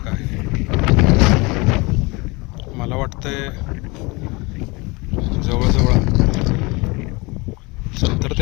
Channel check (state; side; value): quieter; right; 25.7 dB